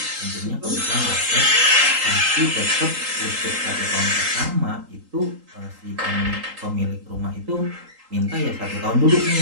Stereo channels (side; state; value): left; late; 3.8 ms